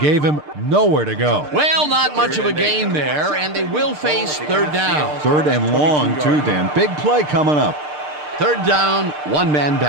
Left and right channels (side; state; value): left; late; 6.7 ms